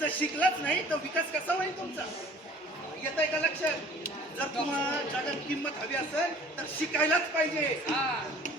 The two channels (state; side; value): normal; both; correlation 0.50